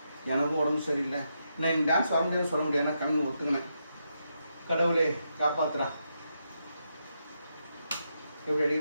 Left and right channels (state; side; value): inverted; both; correlation -0.82